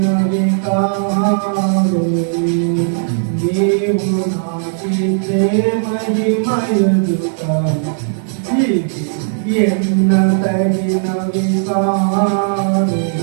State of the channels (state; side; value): silent; left; 66 dB below the other